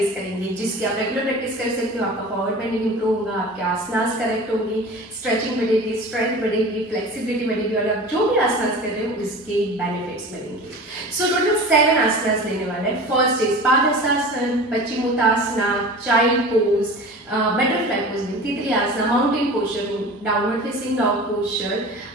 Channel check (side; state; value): both; normal; correlation 0.36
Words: करेंगे, जिसकी आप रेगुलर प्रैक्टिस कर सकते हो। आपका फॉरवर्ड बेंडिंग इम्प्रूव होगा, आपके आसनास करेक्ट होंगे, स्ट्रेचिंग बढ़ेगी, स्ट्रेंथ बढ़ेगी, फ्लेक्सिबिलिटी बढ़ेगी और आप जो भी आसनास कर रहे हो उसके बेनिफिट्स मिलेंगे। सो टोटल 7 आसनास लेने वाले हैं। First is Padahastasana, Paschimottanasana, child pose, butterfly pose में तितली आसना, माउंटेन पोस्चर में downward facing dog posture,